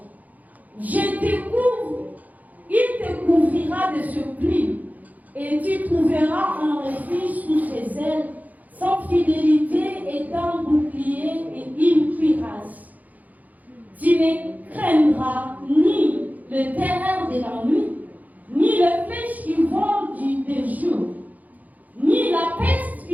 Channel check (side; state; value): left; late; 0.079 ms